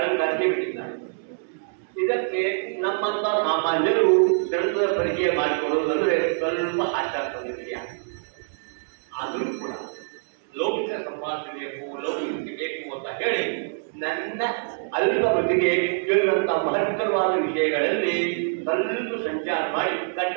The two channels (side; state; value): left; silent; digital silence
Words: ಬಿಟ್ಟಿದ್ದಾರೆ. ಇದಕ್ಕೆ ನಮ್ಮಂತ ಸಾಮಾನ್ಯರು ಗ್ರಂಥದ ಪರಿಚಯ ಮಾಡಿಕೊಳ್ಳುವುದು ಅಂದರೆ ಸ್ವಲ್ಪ ಆಚಾರ ವಿಷಯ. ಆದರೂ ಕೂಡ ಲೌಕಿಕ ಸಂಪಾದನೆ ಬೇಕು, ಲೌಕಿಕ ಬೇಕು ಅಂತ ಹೇಳಿ ನನ್ನ ಅಲ್ಪ ಮಟ್ಟಿಗೆ ಕೇಳಿದಂಥ ಮಹತ್ತರವಾದ ವಿಷಯಗಳಲ್ಲಿ ಸ್ವಲ್ಪ ಸಂಚಾರ ಮಾಡಿ